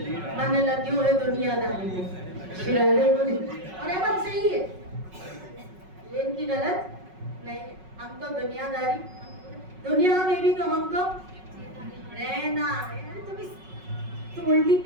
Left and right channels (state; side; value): late; left; 5.4 ms